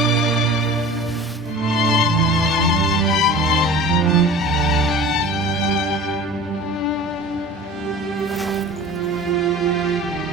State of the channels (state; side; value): normal; both; correlation 0.39